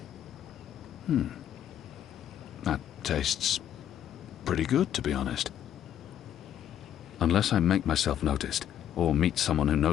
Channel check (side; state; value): right; quieter; 10.5 dB